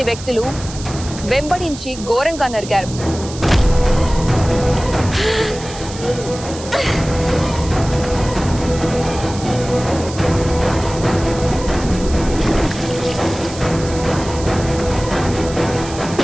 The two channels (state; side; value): noise; right; hiss, 13 dB below the sound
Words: వ్యక్తులు వెంబడించి ఘోరంగా నరికారు.